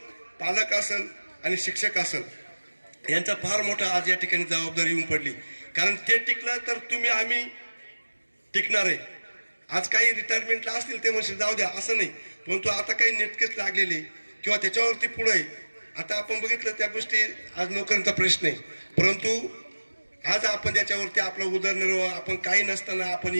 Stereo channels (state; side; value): inverted; both; correlation -1.00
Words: पालक असेल आणि शिक्षक असेल यांचा फार मोठा आज या ठिकाणी जबाबदारी येऊन पडली कारण ते टिकलं तर तुम्ही आम्ही टिकणार आहे आज काही रिटायरमेंटला असतील ते म्हणजे जाऊ द्या असं नाही परंतु आता काही नेटकेच लागलेले किंवा त्याच्यावरती पुढे आहे आता आपण बघितलं त्या गोष्टी आज नोकरीचा प्रश्न आहे परंतु आज आपण त्याच्यावरती आपला उदरनिर्वाह आपण काही नसताना आपण